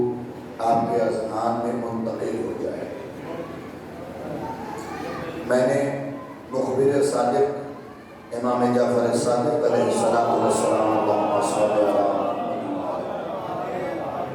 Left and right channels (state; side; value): identical; both; correlation 1.00